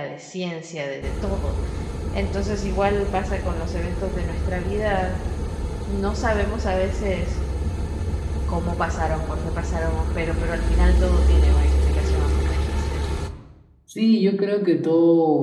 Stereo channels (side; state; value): both; identical; correlation 1.00